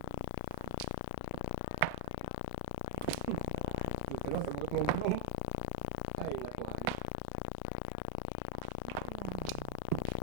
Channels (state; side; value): different; both; correlation 0.00